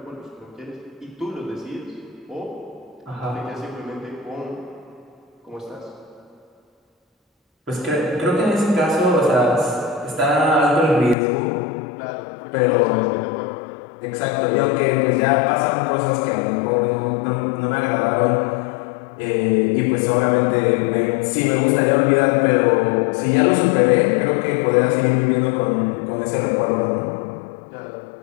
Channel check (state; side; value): drops out; right; at 11.2 s